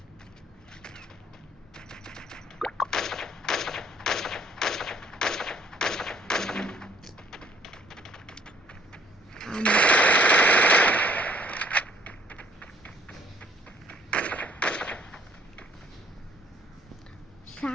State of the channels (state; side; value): normal; both; correlation 0.60